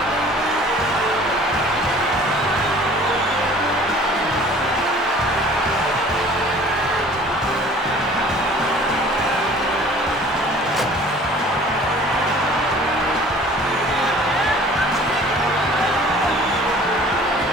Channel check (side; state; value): both; normal; correlation 0.49